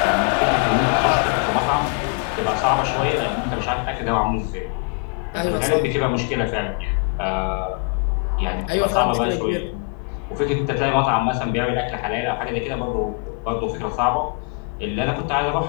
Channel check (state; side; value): quieter; right; 33.9 dB